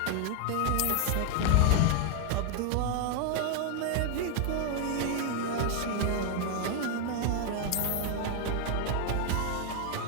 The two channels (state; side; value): different; both; correlation 0.00